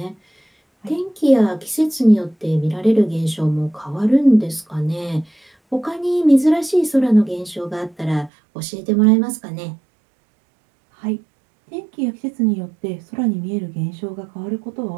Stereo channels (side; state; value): left; drops out; at 8.3 s